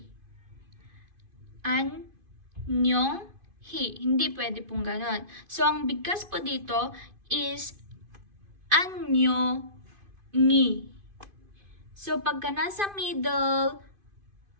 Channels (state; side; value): late; left; 2.5 ms